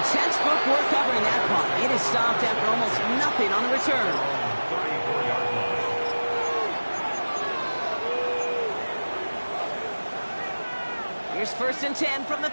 textbook work covering that punt. It is stopped after almost nothing on the return. 34-yard line. Here's 1st and 10 from the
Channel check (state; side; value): inverted; both; correlation -1.00